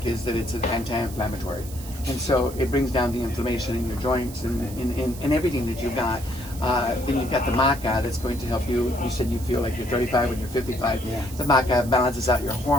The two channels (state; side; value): noise; right; hiss, 16 dB below the sound